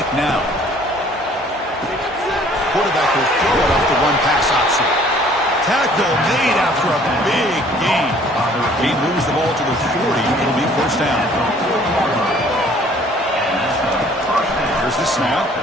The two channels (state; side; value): normal; both; correlation 0.56